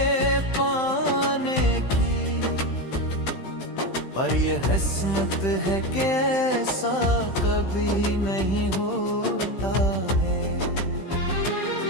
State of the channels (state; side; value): late; right; 15 ms